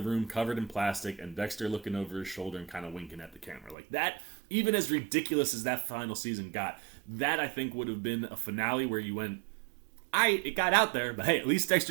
covered in plastic and Dexter looking over his shoulder and kind of winking at the camera. Like that, even as ridiculous as that final season got, that I think would have been a finale where you went, it got out there, but hey, at least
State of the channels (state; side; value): drops out; left; at 3.8 s